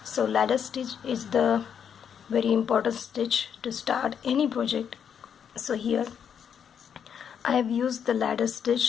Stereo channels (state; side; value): quieter; right; 7.9 dB